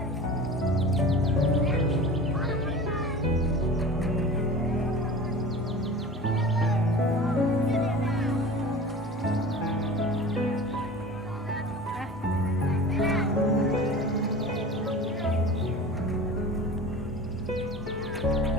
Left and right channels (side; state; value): both; normal; correlation 0.37